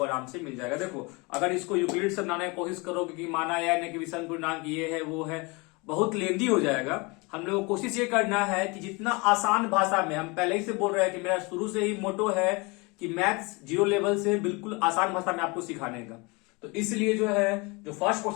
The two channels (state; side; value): quieter; right; 27.4 dB